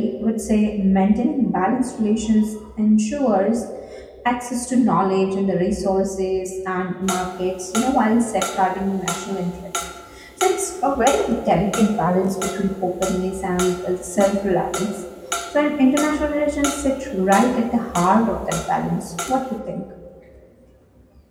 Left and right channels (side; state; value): both; identical; correlation 1.00